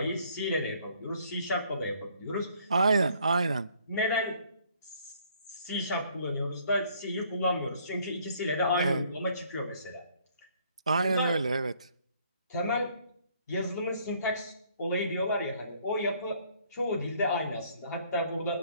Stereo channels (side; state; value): both; inverted; correlation -0.63